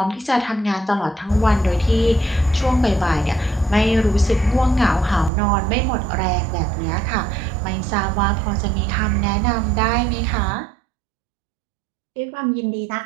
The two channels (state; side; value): drops out; left; at 5.3 s